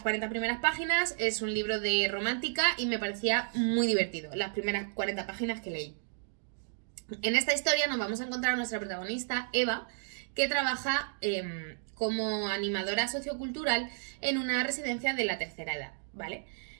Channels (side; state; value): left; silent; digital silence